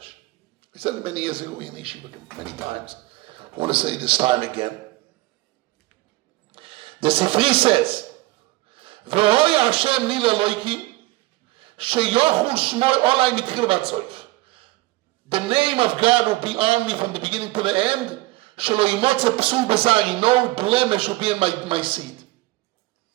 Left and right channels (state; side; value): quieter; left; 20.1 dB